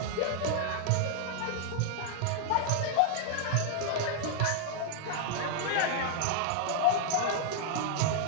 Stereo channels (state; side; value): different; both; correlation -0.01